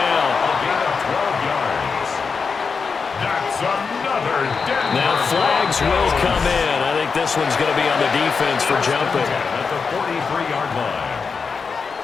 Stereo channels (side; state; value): right; quieter; 5.3 dB